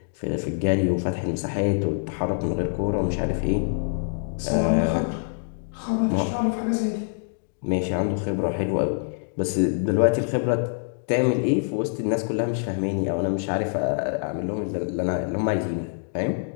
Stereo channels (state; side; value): silent; right; 62 dB below the other